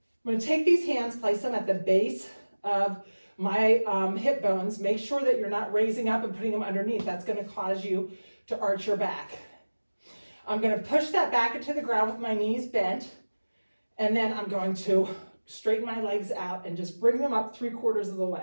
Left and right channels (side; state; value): both; inverted; correlation -1.00